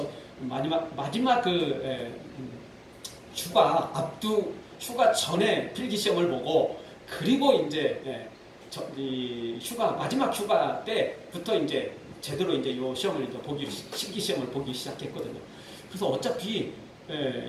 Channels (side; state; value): both; identical; correlation 1.00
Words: 마지막 휴가 전에 필기 시험을 보고, 그리고 이제 마지막 휴가 때부터 이제 제대로 이제 요 시험을 실기 시험을 보기 시작했거든요. 그래서 어차피